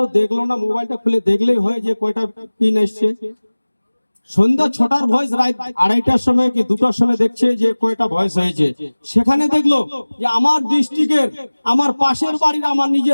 দেখলো না, মোবাইলটা খুলে দেখলেই হয় যে কয়টা পিন এসছে। সন্ধ্যা 6টার ভয়েস রাত 2:30টার সময় কি 2টার সময় দেখছে যে কয়টা ভয়েস হয়েছে। সেখানে দেখলো যে আমার ডিস্ট্রিক্টের, আমার পাশের বাড়ির, আমার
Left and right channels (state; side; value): inverted; both; correlation -1.00